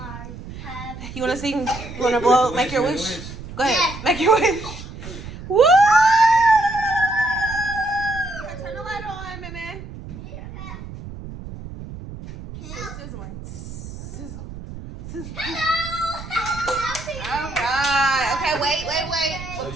You wanna sing? You wanna blow? Make your wish. Go ahead. Make your wish. Woo! Turn the light on, man. Sizzling. Sizzle. Sizzle. All right. Okay, wait.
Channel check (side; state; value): right; noise; rumble, 12 dB below the sound